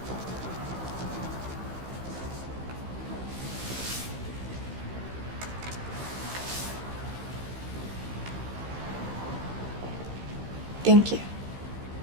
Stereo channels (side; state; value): left; late; 15 ms